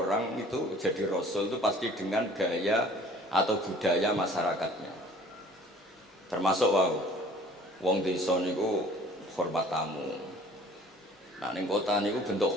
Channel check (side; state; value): both; normal; correlation 0.51